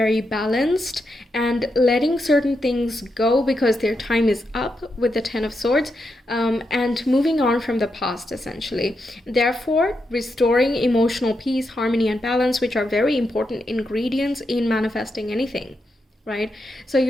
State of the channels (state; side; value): normal; both; correlation 0.84